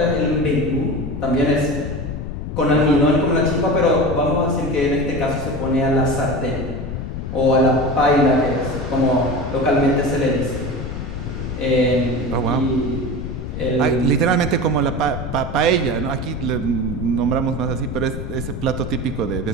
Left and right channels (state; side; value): noise; left; rumble, 6 dB below the sound